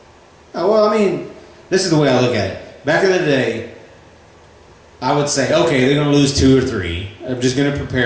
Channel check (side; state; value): both; identical; correlation 1.00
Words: Oh, well, I mean, this is the way I look at it. back in the day, I would say, okay, they're going to lose 2 or 3. I'm just going to